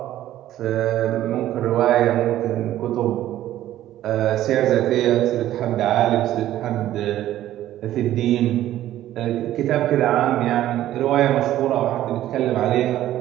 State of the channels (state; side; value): quieter; left; 13.3 dB